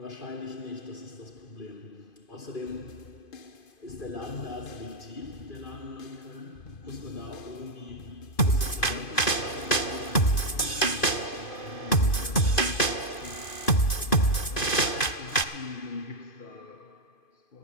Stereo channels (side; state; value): right; late; 2.5 ms